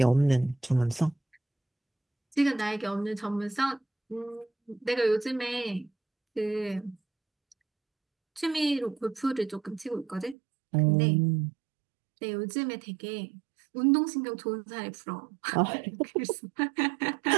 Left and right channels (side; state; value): left; drops out; at 10.4 s